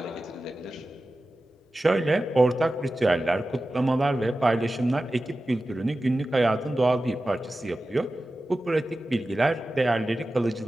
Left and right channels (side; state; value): both; normal; correlation 0.94